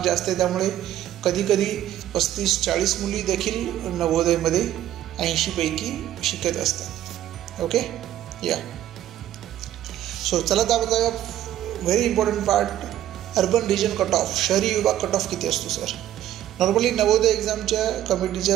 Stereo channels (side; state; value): left; quieter; 12.3 dB